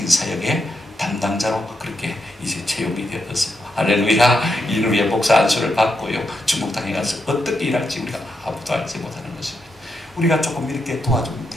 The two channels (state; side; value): normal; both; correlation 0.83